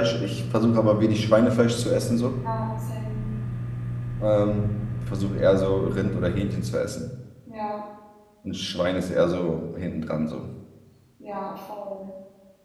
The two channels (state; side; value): identical; both; correlation 1.00